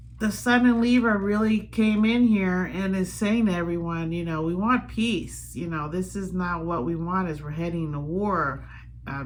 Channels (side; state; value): both; identical; correlation 1.00